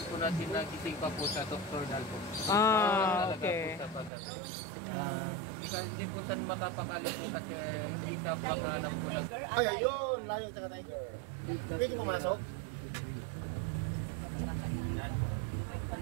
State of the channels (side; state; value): left; drops out; at 4.1 s